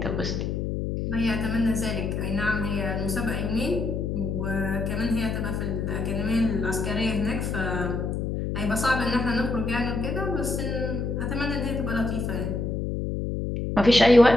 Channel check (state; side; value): noise; left; hum, 2 dB below the sound